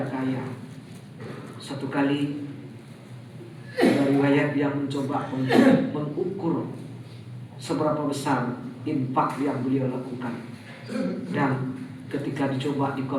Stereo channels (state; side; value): identical; both; correlation 1.00